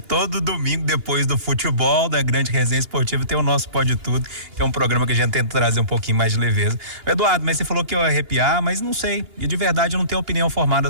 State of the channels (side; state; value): left; late; 2.8 ms